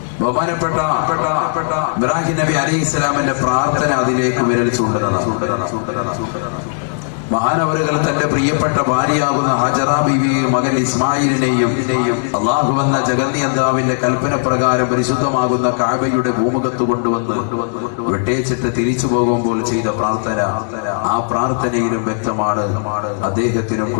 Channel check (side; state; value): right; silent; 68 dB below the other